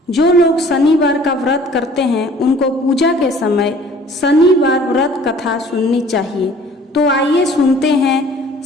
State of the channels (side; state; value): both; normal; correlation 0.52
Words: जो लोग शनिवार का व्रत करते हैं उनको पूजा के समय शनिवार व्रत कथा सुननी चाहिए। तो आइए सुनते हैं